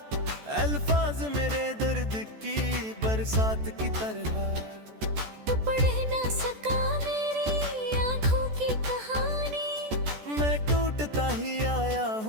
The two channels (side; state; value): left; late; 14 ms